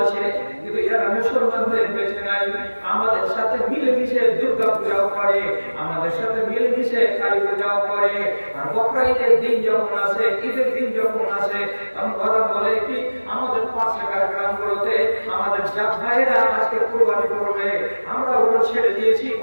আছে, কিন্তু এরা মুসলমান হয়ে বেঁচে নাই। আমাদের সাথে মিলেমিশে দুর্গা পূজাও করে, আমাদের সাথে মিলেমিশে কালী পূজাও করে। আর বকরা ঈদের দিন যখন আসে, ঈদের দিন যখন আসে, তখন ওরা বলে কি আমাদের পাশের গ্রামগুলোতে আমাদের জাত ভাইরা আজকে কুরবানি করবে, আমরা ওগুলো ছেড়ে দিয়েছি,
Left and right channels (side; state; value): both; inverted; correlation -1.00